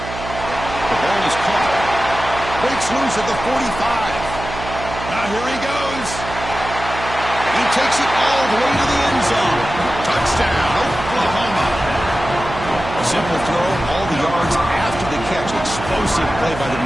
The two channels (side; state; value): right; noise; hum, 9 dB below the sound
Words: ball is caught. Breaks loose at the 45. Now here he goes. He takes it all the way to the end zone. Touchdown, Oklahoma. A simple throw, all the yards after the catch. Explosive play by the